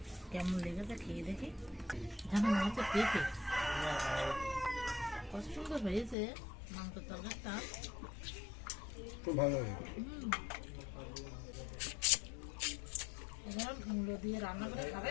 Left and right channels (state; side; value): drops out; right; at 6.2 s